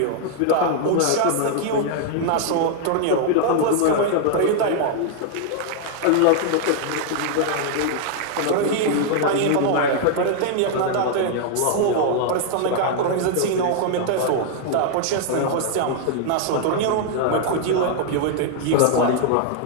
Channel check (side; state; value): both; different; correlation -0.01